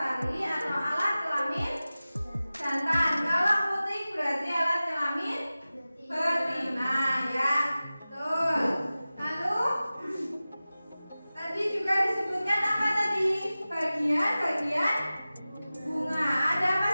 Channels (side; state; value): both; inverted; correlation -0.96